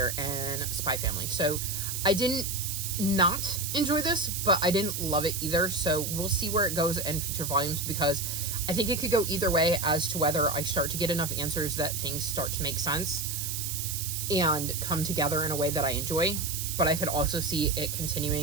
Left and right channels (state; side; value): noise; right; hiss, 4 dB below the sound